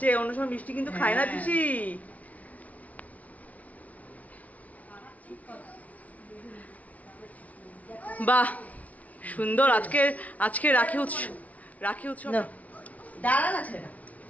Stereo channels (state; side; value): late; right; 0.070 ms